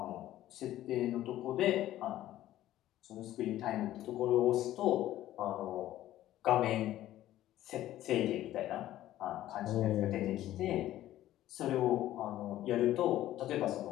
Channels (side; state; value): right; quieter; 13.8 dB